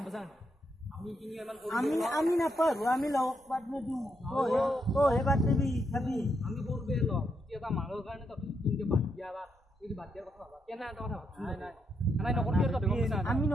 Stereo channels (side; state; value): both; normal; correlation 0.80